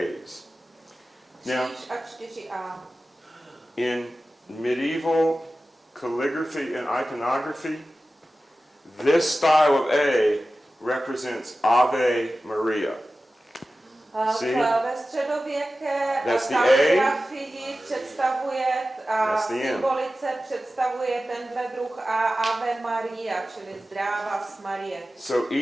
Now, Kříž a 4A. in medieval calligraphy and iconography, this style of A represents Ave Maria. See? Ve středověké That's the A. kaligrafii představuje a That's the M. symbolice představuje tenhle druh a Ave Maria, čili zdráva s Marie. So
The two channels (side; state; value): both; normal; correlation 0.95